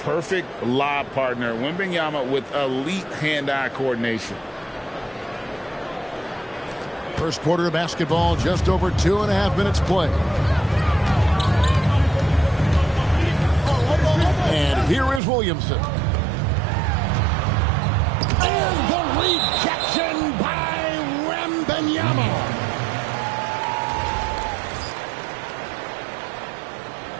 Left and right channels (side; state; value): left; drops out; at 15.2 s